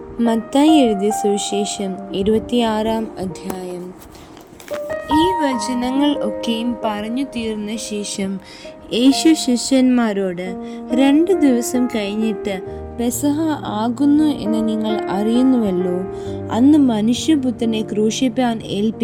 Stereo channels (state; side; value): identical; both; correlation 1.00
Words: മത്തായി എഴുതിയ സുവിശേഷം 26-ാം അധ്യായം. ഈ വചനങ്ങൾ ഒക്കെയും പറഞ്ഞു തീർന്ന ശേഷം യേശു ശിഷ്യന്മാരോട്, 2 ദിവസം കഴിഞ്ഞിട്ട് പെസഹ ആകുന്നു എന്ന് നിങ്ങൾ അറിയുന്നുവല്ലോ. അന്ന് മനുഷ്യപുത്രനെ ക്രൂശിപ്പാൻ